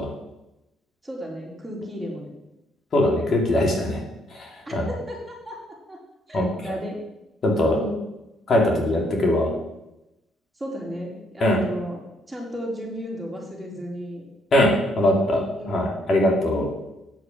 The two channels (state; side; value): normal; both; correlation 0.70